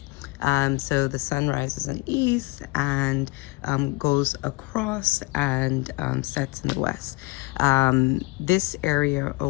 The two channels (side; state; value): right; quieter; 24.1 dB